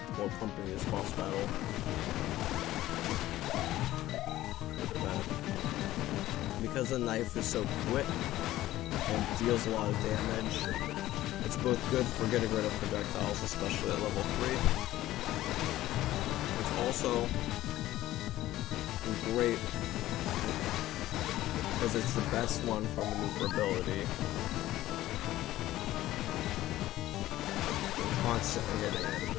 will accompany this boss battle. But because the knife is so quick and deals a lot of damage, it's both good for getting rid of projectiles, especially at level 3. It's also great because it's the best one for maneuverability and constantly hitting it.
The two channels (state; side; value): quieter; right; 15.1 dB